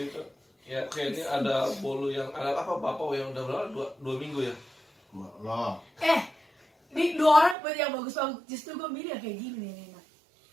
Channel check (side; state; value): left; drops out; at 7.6 s